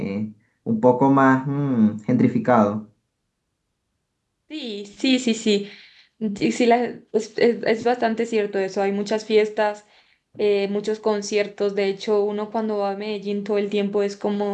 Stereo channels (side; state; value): both; identical; correlation 1.00